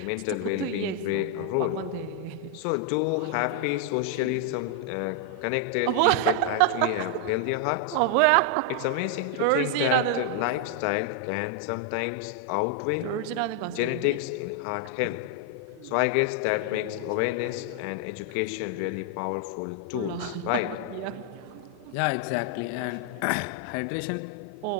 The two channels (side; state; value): both; different; correlation 0.00